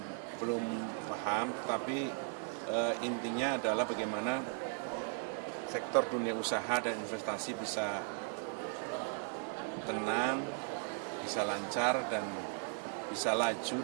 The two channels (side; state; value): left; silent; 53 dB below the other